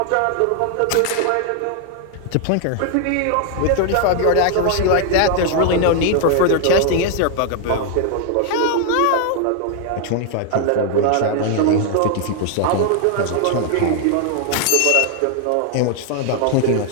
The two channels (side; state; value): both; different; correlation 0.00